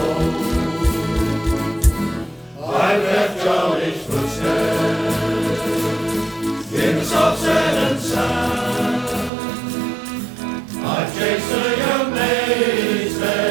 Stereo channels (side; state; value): left; drops out; at 9.3 s